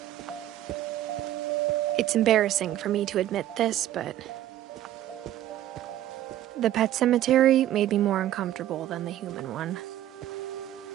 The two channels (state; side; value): quieter; left; 12.8 dB